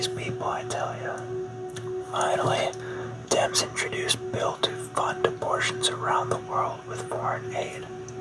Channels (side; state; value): both; identical; correlation 1.00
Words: people, I tell you. Finally, Dems introduced bill to fund abortions around the world with foreign aid.